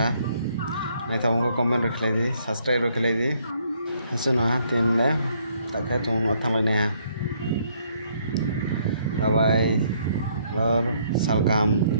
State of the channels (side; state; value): both; inverted; correlation -0.68